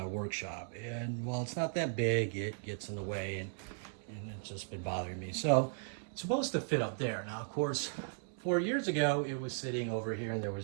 workshop. And while it's not that big, it gets in the way and it's just been bothering me. So it's supposed to fit up there. Now, of course, 4 years ago, it was sitting over here and there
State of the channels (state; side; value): silent; left; digital silence